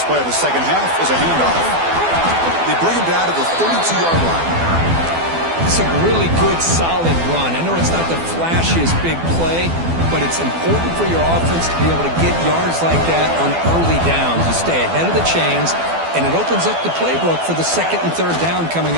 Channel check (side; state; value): left; late; 12 ms